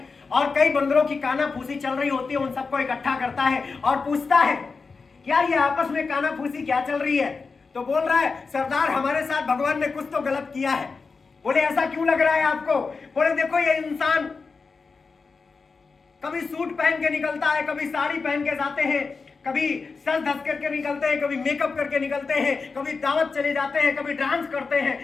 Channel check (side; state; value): right; quieter; 4.6 dB